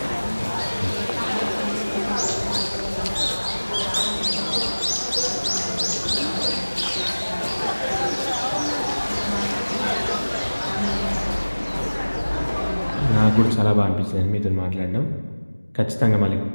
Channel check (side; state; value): both; inverted; correlation -1.00